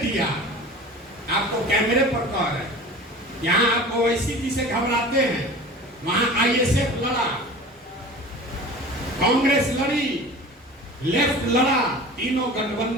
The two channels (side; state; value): both; normal; correlation 0.38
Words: आपको कैमरे पर कह रहे हैं, यहाँ आप ओवैसी जी से घबराते हैं, वहां आईएसएफ लड़ा, कांग्रेस लड़ी, लेफ्ट लड़ा, तीनों